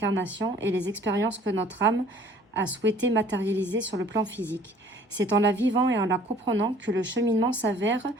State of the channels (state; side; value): normal; both; correlation 0.54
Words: et les expériences que notre âme a souhaité matérialiser sur le plan physique. C'est en la vivant et en la comprenant que le cheminement s'avère